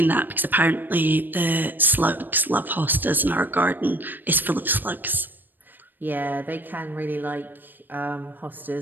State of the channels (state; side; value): late; left; 0.091 ms